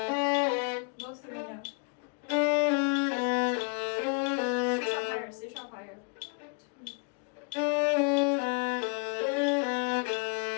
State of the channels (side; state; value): right; quieter; 35.1 dB